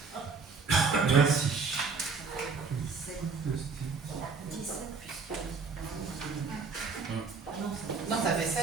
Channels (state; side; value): quieter; left; 4.8 dB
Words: Merci. 17 puisque... Non, ça fait